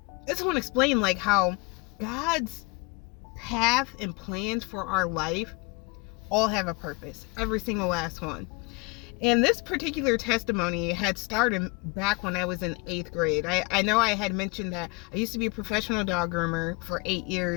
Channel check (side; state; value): right; quieter; 28.4 dB